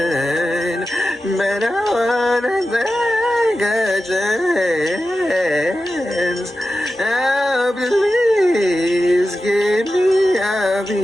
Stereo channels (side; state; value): both; normal; correlation 0.92